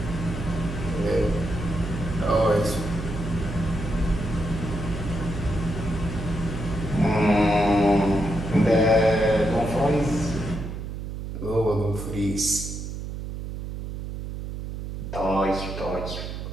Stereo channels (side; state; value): right; noise; hum, 7 dB below the sound